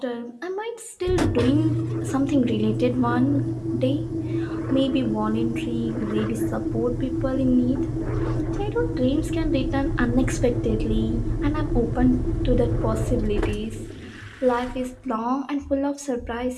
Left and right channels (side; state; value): both; identical; correlation 1.00